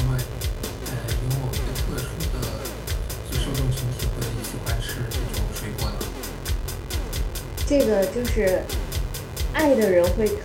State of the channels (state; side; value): identical; both; correlation 1.00